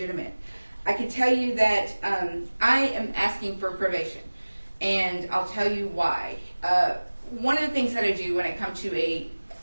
I can tell you that I am asking for probation, and I'll tell you why. One of the things that I do when I come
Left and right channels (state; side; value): inverted; both; correlation -1.00